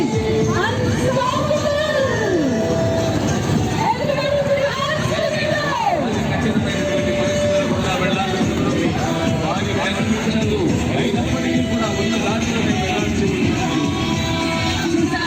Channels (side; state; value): both; identical; correlation 1.00